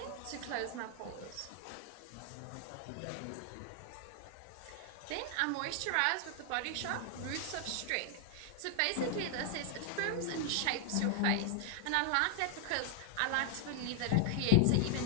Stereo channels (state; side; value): different; both; correlation 0.00